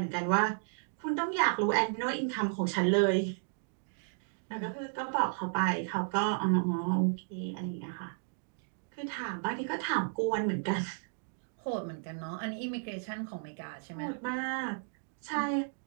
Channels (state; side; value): silent; left; digital silence